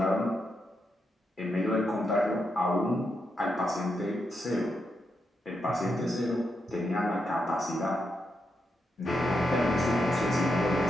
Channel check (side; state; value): both; normal; correlation 0.83